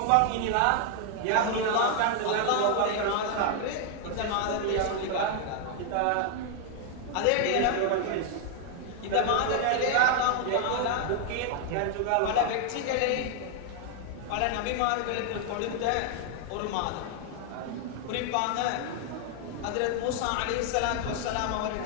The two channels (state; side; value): different; both; correlation 0.00